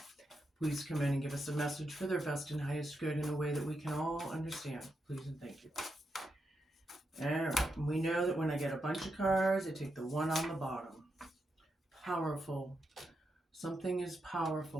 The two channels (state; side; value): normal; both; correlation 0.84